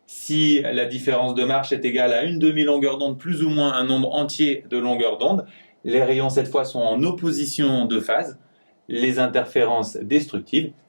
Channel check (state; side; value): inverted; both; correlation -1.00